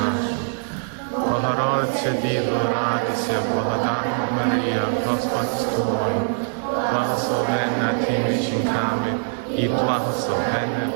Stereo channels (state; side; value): silent; left; digital silence